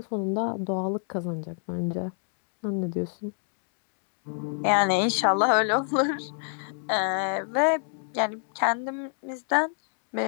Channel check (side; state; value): right; silent; 60 dB below the other